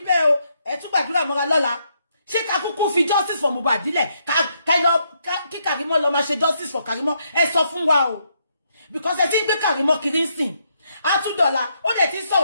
bẹ́ẹ̀ o ẹ tún gbàdúrà mọ́ra lọ́la ṣé ká kúkú fi justice for Mohbad dílẹ̀ kí Karimo lọ máa ṣe justice for Karimo ẹ sọ fún wa o because ẹ ti ń gbé Karimo kiri ń sìn a tún dọ̀la ó dẹ̀ ti ń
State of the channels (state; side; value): inverted; both; correlation -0.76